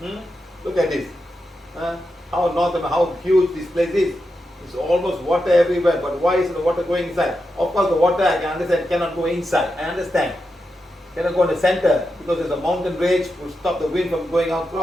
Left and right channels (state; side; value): normal; both; correlation 0.88